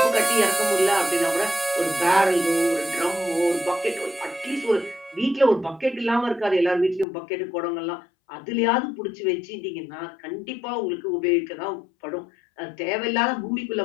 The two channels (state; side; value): drops out; right; at 7.1 s